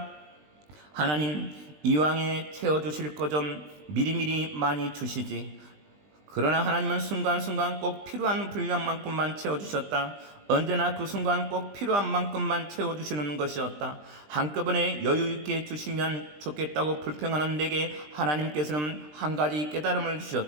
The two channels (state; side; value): late; left; 20 ms